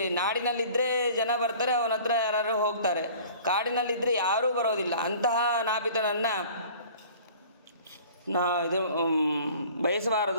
ನಾಡಿನಲ್ಲಿದ್ದರೆ ಜನ ಬರ್ತಾರೆ, ಅವನ ಹತ್ರ ಯಾರು ಹೋಗ್ತಾರೆ. ಕಾಡಿನಲ್ಲಿದ್ದರೆ ಯಾರೂ ಬರೋದಿಲ್ಲ. ಅಂತಹ ನಾಪಿತನನ್ನು ಇದು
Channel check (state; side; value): inverted; both; correlation -0.47